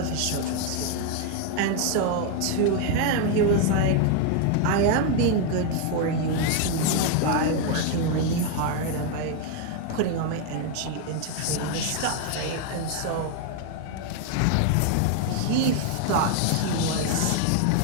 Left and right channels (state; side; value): different; both; correlation 0.01